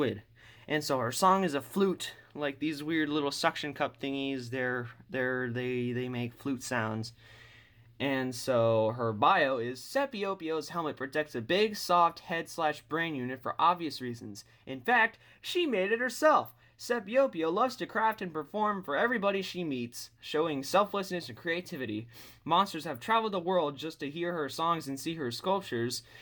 And so her song is a flute, like these weird little suction cup thingies. They make flute sounds. And so her bio is Scipio Pio's helmet protects a big, soft head/brain unit for obvious reasons. In fact, she made it herself. Scipio Pio loves to craft and perform for everybody she meets, showing selflessness and creativity. Monsters have traveled the world just to hear her songs and see her sculptures.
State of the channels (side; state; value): both; identical; correlation 1.00